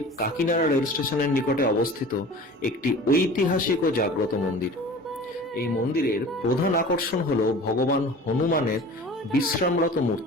কাকিনাড়া রেল স্টেশনের নিকটে অবস্থিত একটি ঐতিহাসিক ও জাগ্রত মন্দির। এই মন্দিরের প্রধান আকর্ষণ হল ভগবান হনুমানের বিশ্রামরত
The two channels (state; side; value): normal; both; correlation 0.40